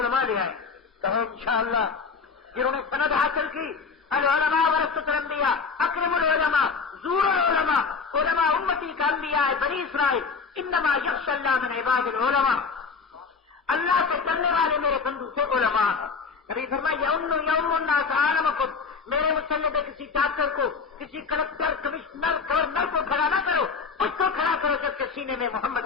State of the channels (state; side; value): quieter; right; 5.1 dB